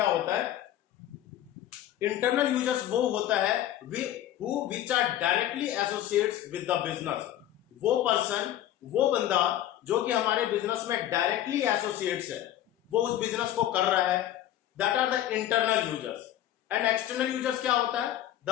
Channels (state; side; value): quieter; right; 12.5 dB